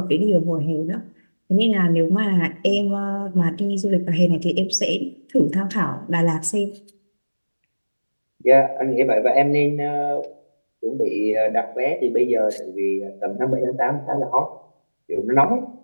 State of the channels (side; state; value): both; inverted; correlation -1.00